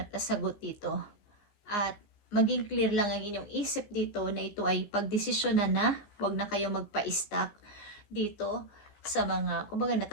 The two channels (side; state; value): right; late; 15 ms